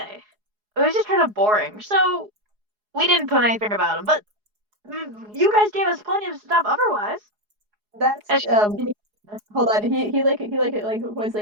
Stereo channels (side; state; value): left; late; 4.8 ms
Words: It was just kind of boring, so we didn't put anything about him. But you guys gave us plenty of stuff otherwise. That's hold on. He was